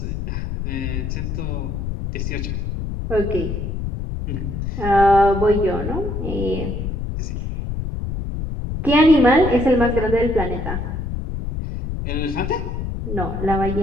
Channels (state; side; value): noise; left; rumble, 4 dB below the sound